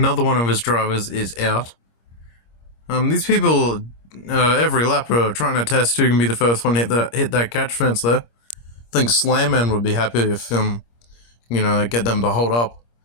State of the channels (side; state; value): right; late; 26 ms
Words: one of his drivers is out. These people, every lap are trying to test who can be the first one to hit that catch fence there. I think Slanman would be happy if, get them to hold up.